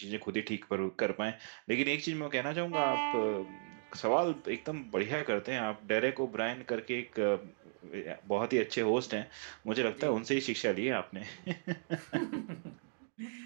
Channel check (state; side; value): silent; left; digital silence